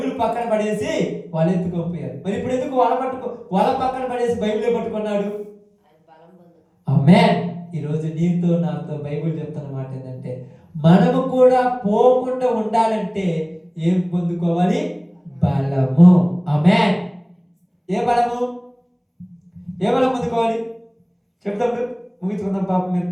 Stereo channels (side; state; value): both; identical; correlation 1.00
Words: పక్కన పడేసి వాళ్ళు ఎత్తుకోపోయారు. మరి ఇప్పుడు ఎందుకు వల పక్కన పడేసి బైబిలే పట్టుకున్నాడు? ఆమేన్. ఈరోజు నీతో నాతో బైబిల్ చెప్తున్న మాట ఏంటంటే, మనము కూడా పోకుండా ఉండాలంటే ఏం పొందుకోవాలి? బలము. ఆమేన్. ఏ బలము? ఏ బలం పొందుకోవాలి చెప్తాం, ముగించుకుందాం. పాపం మీరు